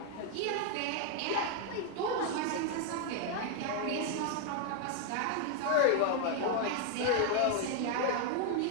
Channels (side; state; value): both; different; correlation 0.00